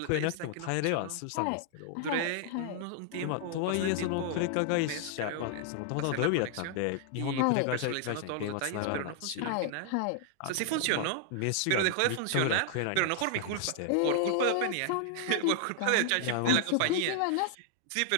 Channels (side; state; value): both; different; correlation 0.00